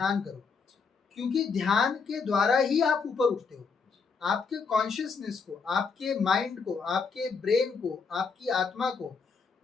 करो, क्योंकि ध्यान के द्वारा ही आप ऊपर उठते हो। आपके कॉन्शियसनेस को, आपके माइंड को, आपके ब्रेन को, आपकी आत्मा को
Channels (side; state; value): right; quieter; 5.3 dB